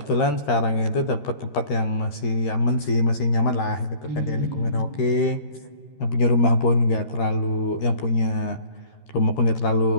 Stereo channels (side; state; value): right; late; 13 ms